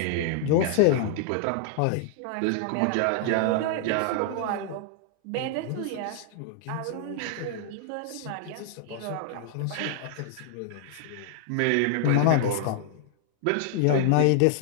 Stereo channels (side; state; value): both; different; correlation 0.00